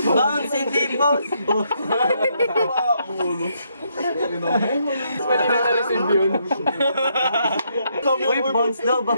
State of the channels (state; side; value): inverted; both; correlation -0.75